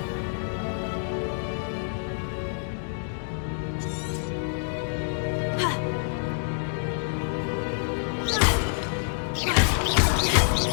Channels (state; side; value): silent; right; digital silence